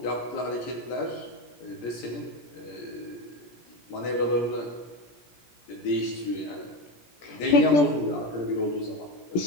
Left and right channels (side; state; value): right; late; 17 ms